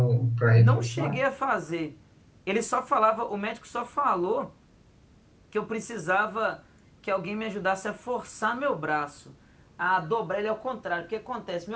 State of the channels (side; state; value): both; identical; correlation 1.00